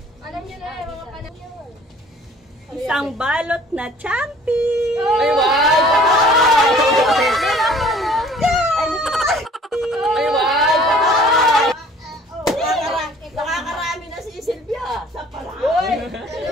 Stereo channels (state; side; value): normal; both; correlation 0.52